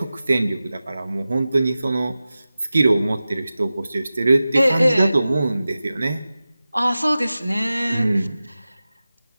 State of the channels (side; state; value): both; inverted; correlation -0.95